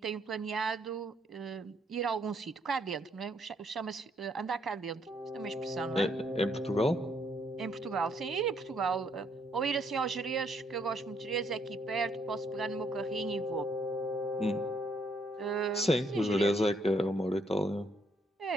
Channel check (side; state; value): both; normal; correlation 0.70